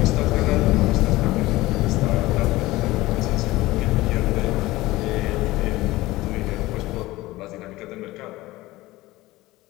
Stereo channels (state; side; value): quieter; right; 18.6 dB